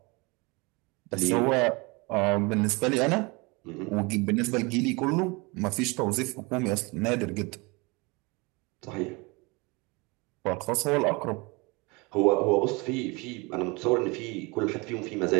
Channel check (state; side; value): quieter; left; 26.8 dB